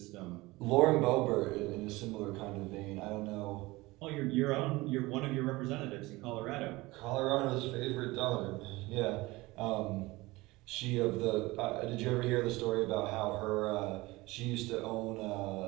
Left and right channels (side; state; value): left; quieter; 21.0 dB